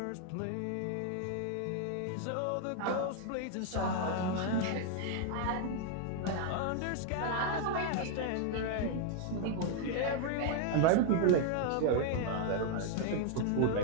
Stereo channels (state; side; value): different; both; correlation 0.00